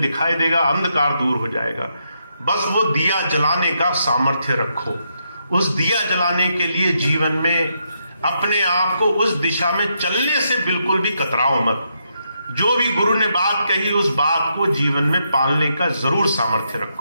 दिखाई देगा, अंधकार दूर हो जाएगा। बस वो दिया जलाने का सामर्थ्य रखो। उस दिया जलाने के लिए जीवन में अपने आप को उस दिशा में चलने से बिल्कुल भी कतराओ मत। जो भी गुरु ने बात कही उस बात को जीवन में पालने का जरूर सामर्थ्य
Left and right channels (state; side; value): inverted; both; correlation -0.79